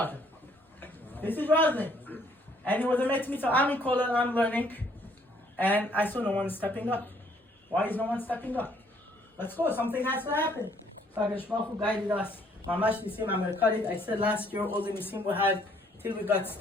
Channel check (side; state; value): both; normal; correlation 0.64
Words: is Roslin. And it was a met mitzvah. I'm in Kollel, I'm learning. And I saw no one stepping up. Why is no one stepping up? Let's go. Something has to happen. So HaKadosh Baruch Hu guided us. Mamash Nisim, I'm going to cut it. I said last year all the Nisim we had till we got